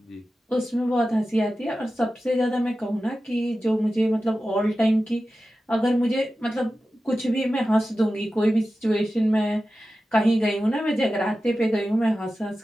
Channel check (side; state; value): both; normal; correlation 0.94